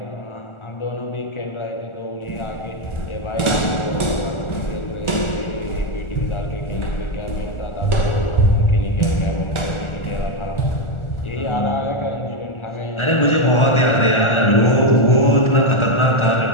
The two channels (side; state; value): right; late; 1.4 ms